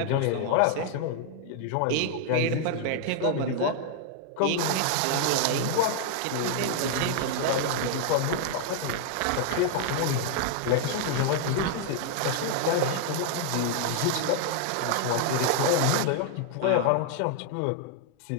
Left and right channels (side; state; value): both; different; correlation 0.00